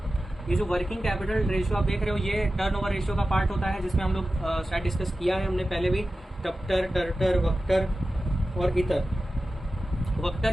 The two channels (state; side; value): normal; both; correlation 0.94